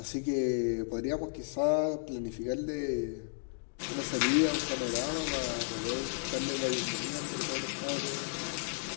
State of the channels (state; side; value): silent; right; digital silence